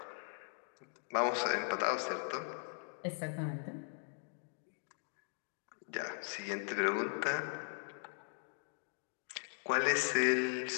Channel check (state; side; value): silent; right; 52 dB below the other